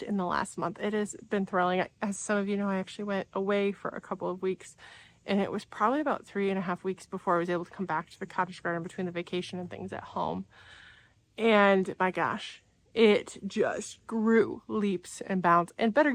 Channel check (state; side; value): identical; both; correlation 1.00